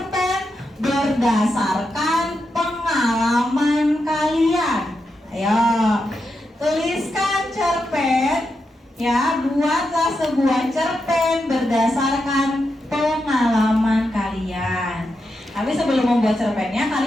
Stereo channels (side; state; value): both; normal; correlation 0.86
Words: berdasarkan pengalaman kalian. Ayo, tuliskan cerpen. Ya, buatlah sebuah cerpen berdasarkan pengalaman kalian. Tapi sebelum membuat cerpennya,